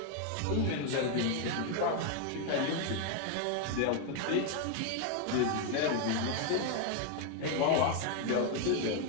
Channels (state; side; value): different; both; correlation 0.01